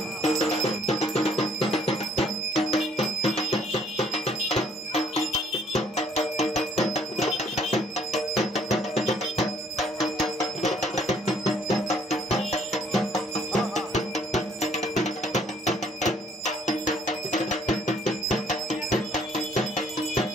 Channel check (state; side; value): normal; both; correlation 0.63